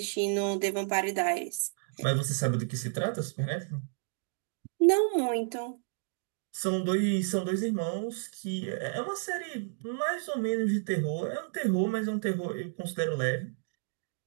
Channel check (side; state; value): left; silent; digital silence